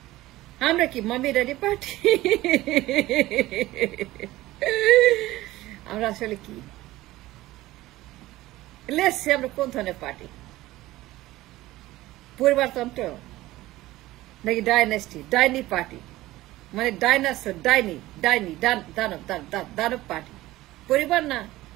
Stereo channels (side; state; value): left; quieter; 17.2 dB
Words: আমরা কি মামি ড্যাডি পার্টি? আমরা আসলে কি? লেটস সে আমরা কোন ধরনের পার্টি? পরিবারতন্ত্র নাকি ডাইনেস্টি, ডাইনি পার্টি, মানে ডাইনাসর, ডাইনি, ডাইনি, দানব, দানব পার্টি। পরিবার না